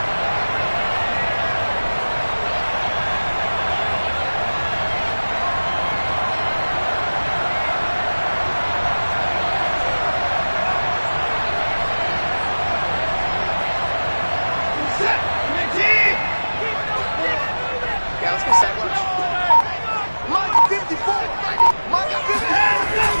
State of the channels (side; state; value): both; inverted; correlation -1.00